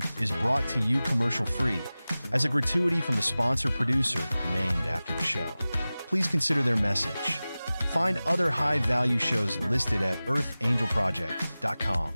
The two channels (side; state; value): both; inverted; correlation -0.97